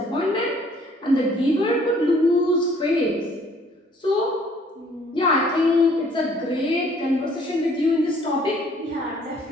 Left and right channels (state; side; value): normal; both; correlation 0.59